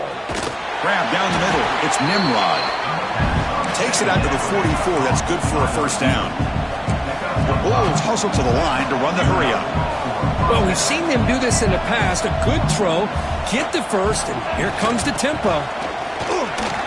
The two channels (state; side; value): identical; both; correlation 1.00